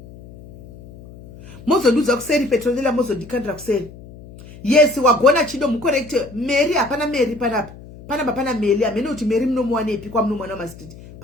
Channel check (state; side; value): noise; left; hum, 18 dB below the sound